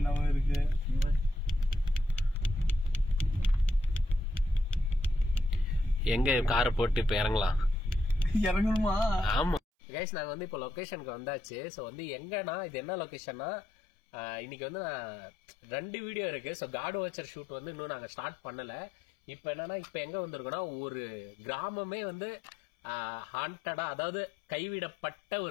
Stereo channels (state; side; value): drops out; right; at 9.6 s